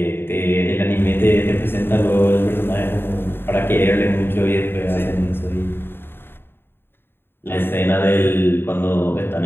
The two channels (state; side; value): late; right; 0.11 ms